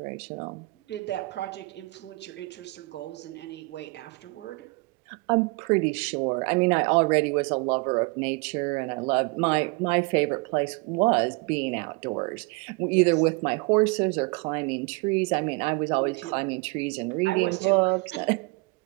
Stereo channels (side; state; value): left; quieter; 26.2 dB